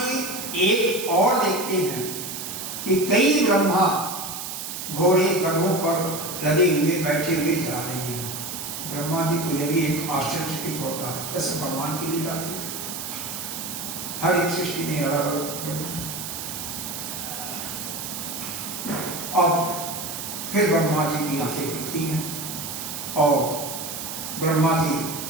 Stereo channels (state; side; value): noise; right; hiss, 6 dB below the sound